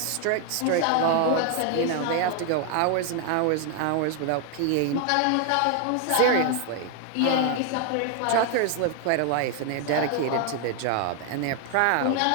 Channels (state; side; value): different; both; correlation 0.00